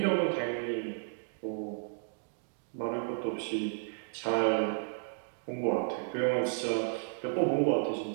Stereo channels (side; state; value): left; silent; digital silence